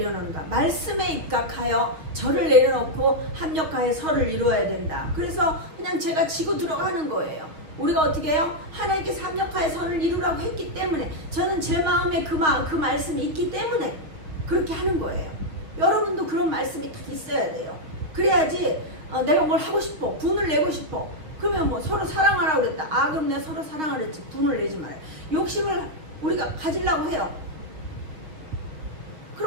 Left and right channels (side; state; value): left; late; 6.4 ms